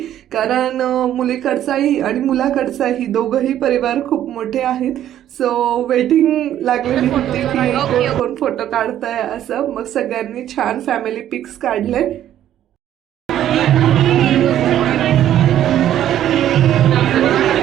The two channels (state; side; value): quieter; left; 11.5 dB